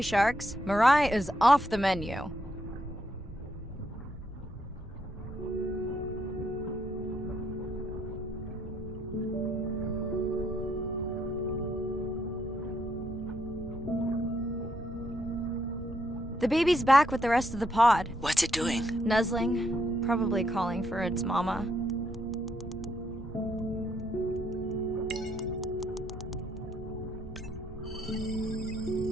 sharks. Mirai is off the menu. The baby's back with the rest of the pod. What's it doing? Nuzzling, probably calling for its mama.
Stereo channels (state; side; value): normal; both; correlation 0.75